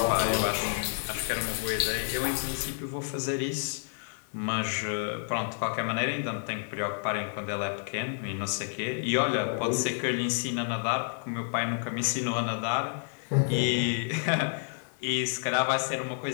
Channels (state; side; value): silent; right; digital silence